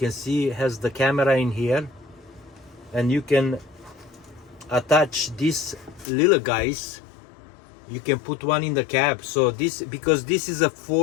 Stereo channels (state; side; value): drops out; right; at 6.1 s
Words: see, it has the camera in here, and you can attach these little guys. You can put one in the cab. So this, because this is a